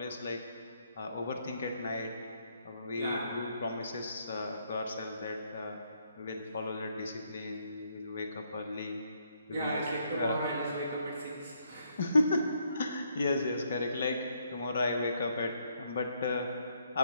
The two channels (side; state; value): both; inverted; correlation -0.73